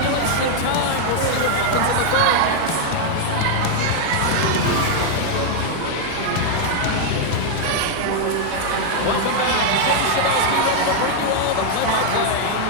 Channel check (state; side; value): different; both; correlation 0.00